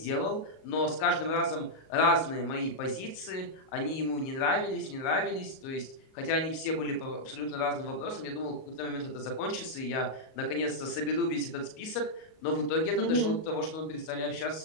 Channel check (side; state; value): right; late; 38 ms